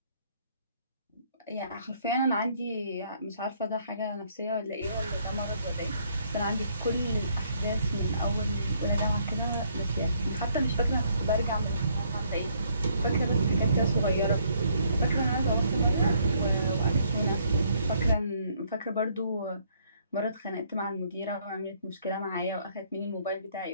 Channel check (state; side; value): inverted; both; correlation -0.67